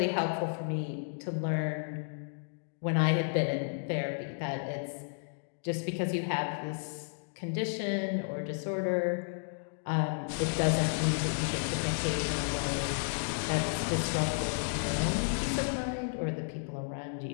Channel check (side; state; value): right; silent; digital silence